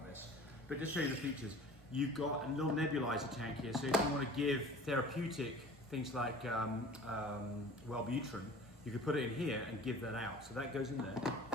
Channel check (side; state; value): both; normal; correlation 0.43